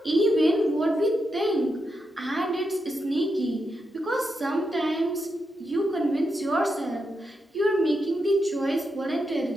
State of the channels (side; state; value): both; normal; correlation 0.85